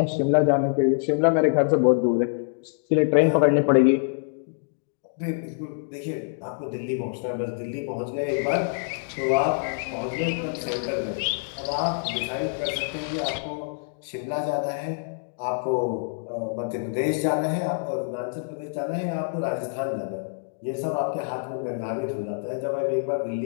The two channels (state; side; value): silent; right; digital silence